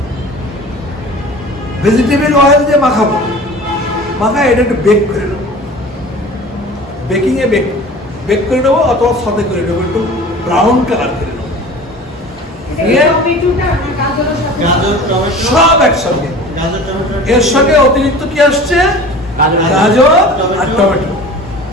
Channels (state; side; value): normal; both; correlation 0.40